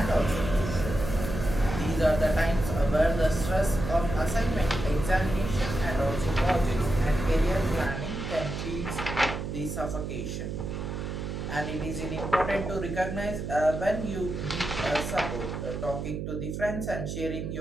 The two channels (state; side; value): noise; right; hum, 5 dB below the sound